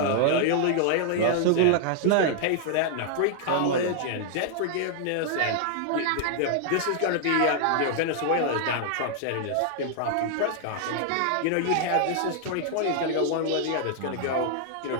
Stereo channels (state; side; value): different; both; correlation 0.00